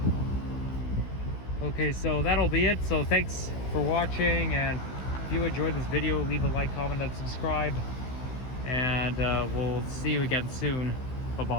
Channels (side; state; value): right; late; 16 ms